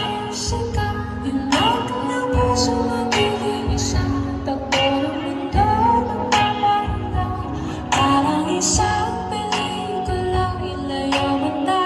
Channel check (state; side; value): identical; both; correlation 1.00